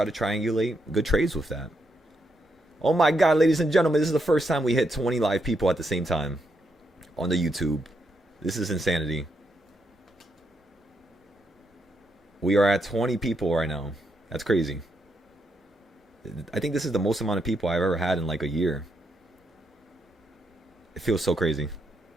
to triangulate good trades with that. Oh my God, ladies and gentlemen, this is the first time we hit 20 live people at the same time on the YouTube. This is insanity. We are at 20 people right now. That's crazy. I think this is the most amount of people I've ever had in like a year. It feels so crazy.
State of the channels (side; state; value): both; normal; correlation 0.80